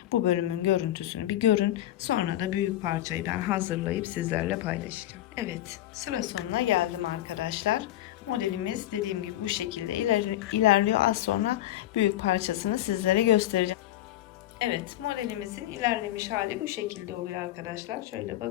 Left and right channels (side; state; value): right; quieter; 13.9 dB